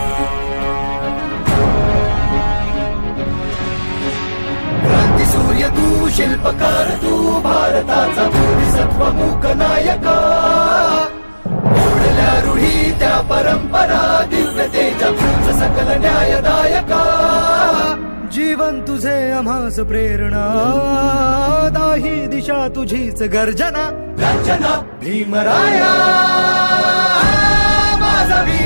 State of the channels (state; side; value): inverted; both; correlation -1.00